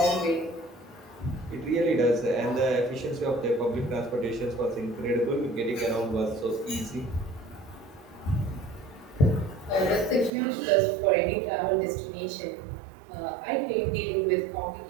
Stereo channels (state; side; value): drops out; left; at 10.3 s